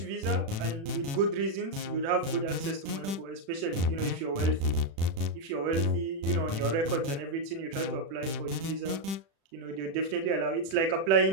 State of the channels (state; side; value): late; left; 36 ms